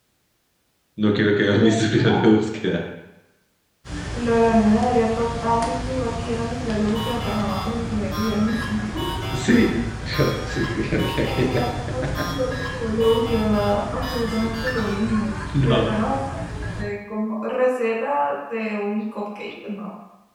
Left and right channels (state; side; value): identical; both; correlation 1.00